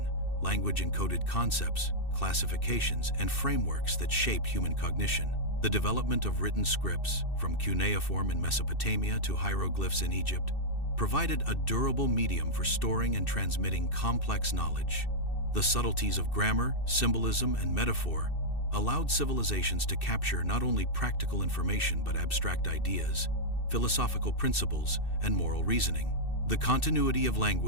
language encoded concepts, classifications, and frameworks that shaped human cognition. The development of written scripts, from cuneiform in Mesopotamia to hieroglyphs in Egypt, provided a durable medium for storing and transmitting complex knowledge. The subtleties of grammar, symbolism, and metaphor allowed civilizations to capture not only practical information but abstract ideas, philosophical principles, and moral reasoning. The continuity of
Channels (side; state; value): right; late; 2.6 ms